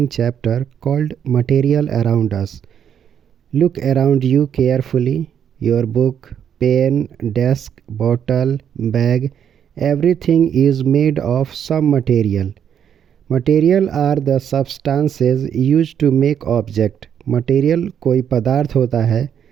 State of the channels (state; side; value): quieter; left; 8.6 dB